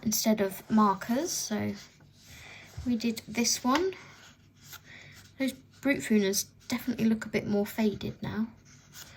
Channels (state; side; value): identical; both; correlation 1.00